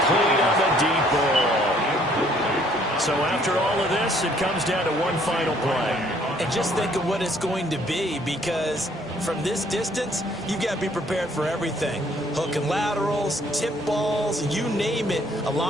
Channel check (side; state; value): both; normal; correlation 0.62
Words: on the deep ball. So after all of this, it comes down to one final play. And just think of what it's going to be, because from this distance, you've got to be prepared for everything. Hook and laterals, tip balls, you name it. A